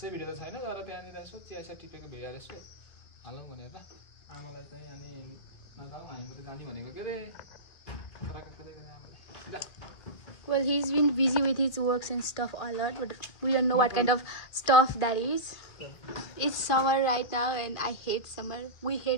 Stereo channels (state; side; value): late; right; 2.5 ms